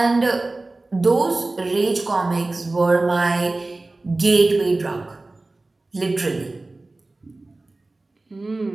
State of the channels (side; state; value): left; quieter; 3.1 dB